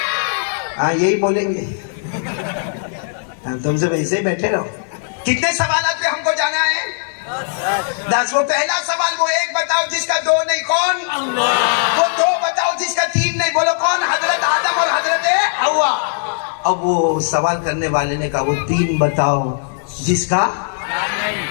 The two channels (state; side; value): silent; right; digital silence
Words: ہاں یہی بولیں گے، تم سے ویسے ہی بیٹھے رہو۔ کتنے سوالات پہ ہم کو جانا ہے؟ 10۔ وہ پہلا سوال وہ ایک بتاؤ جس کا دو نہیں، کون؟ وہ دو بتاؤ جس کا تین نہیں، بولو کون؟ حضرت آدم اور حضرت حوا۔ اب وہ سوال کرنے والے نے کہا وہ تین بتاؤ جس کا،